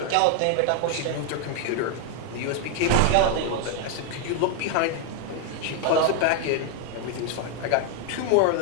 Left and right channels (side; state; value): both; different; correlation 0.00